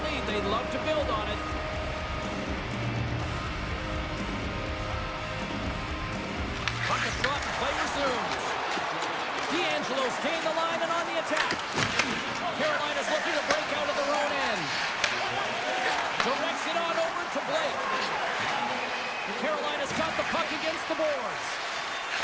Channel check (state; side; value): identical; both; correlation 1.00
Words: lead. They'd love to build on it. Puck is dropped and play resumes. D'Angelo's gained the line and on the attack. Carolina's looking to break out of their own end. Directs it on over to Blake. Carolina's got the puck against the boards.